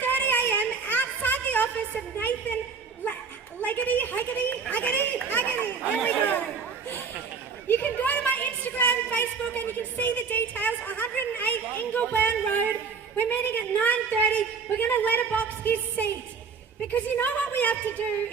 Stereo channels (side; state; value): left; quieter; 5.5 dB